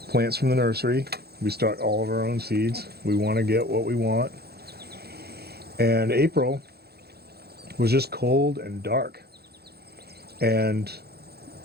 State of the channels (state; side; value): late; left; 0.46 ms